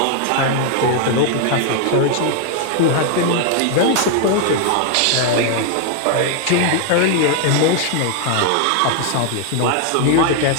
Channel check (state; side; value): different; both; correlation 0.00